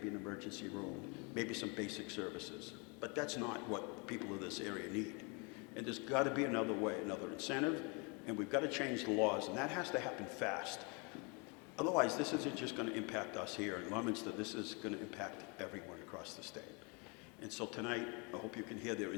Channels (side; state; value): right; quieter; 31.9 dB